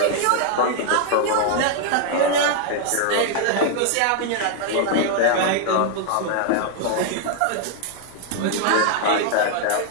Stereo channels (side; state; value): both; different; correlation 0.00